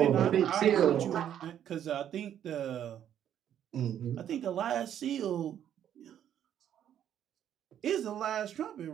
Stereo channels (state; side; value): quieter; left; 10.1 dB